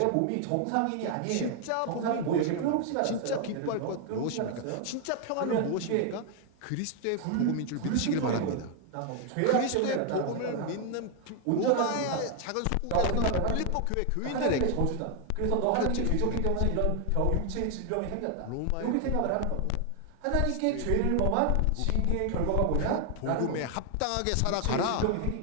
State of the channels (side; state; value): both; different; correlation 0.00